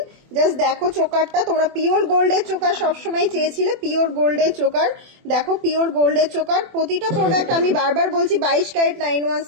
জাস্ট দেখো চোকারটা, তোমরা পিওর গোল্ডের চোকার সবসময় চেয়েছিলে, পিওর গোল্ডের চোকার। দেখো পিওর গোল্ডের চোকার। প্রতিটা প্রোডাক্ট আমি বারবার বলছি 22 ক্যারেট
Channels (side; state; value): left; late; 24 ms